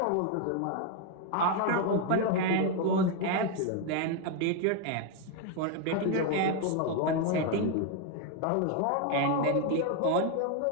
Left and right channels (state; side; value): different; both; correlation 0.01